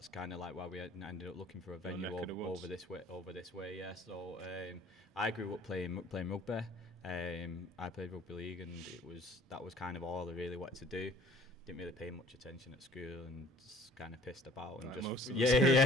kind of like why we ended up looking for a venue over this way. Yeah. So I grew up playing rugby. I played rugby league, and that was kind of all I really wanted to do. Didn't really pay much attention at school, and just kind of pissed about, and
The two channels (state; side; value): normal; both; correlation 0.51